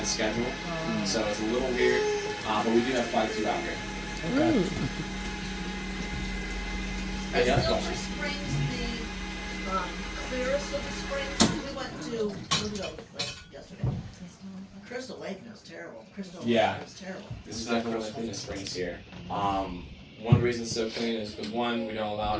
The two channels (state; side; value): identical; both; correlation 1.00